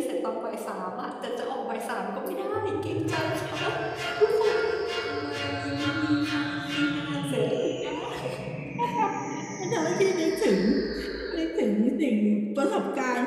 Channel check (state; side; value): identical; both; correlation 1.00